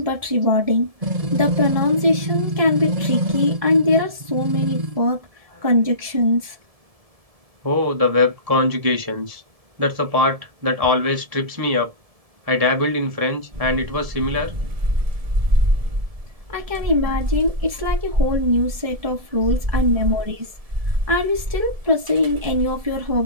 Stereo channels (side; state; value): left; late; 1.7 ms